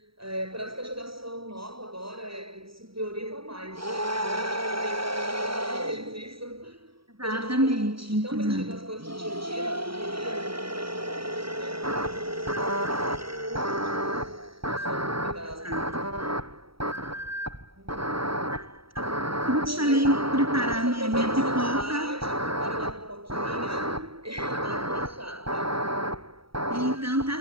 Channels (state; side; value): late; left; 0.75 ms